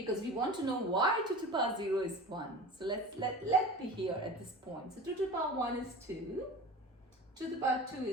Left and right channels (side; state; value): both; normal; correlation 0.36